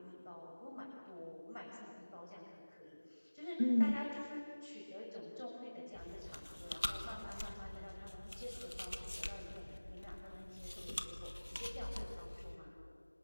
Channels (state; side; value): inverted; both; correlation -1.00